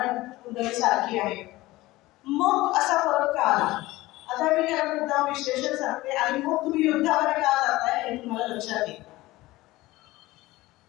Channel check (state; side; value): quieter; right; 18.6 dB